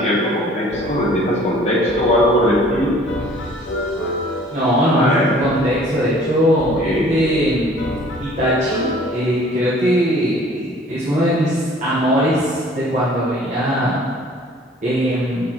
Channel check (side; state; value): both; normal; correlation 0.52